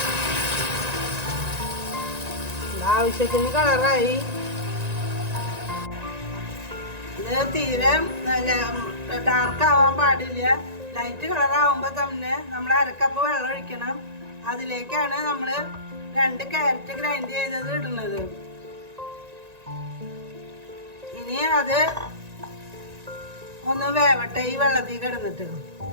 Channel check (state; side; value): late; left; 1.9 ms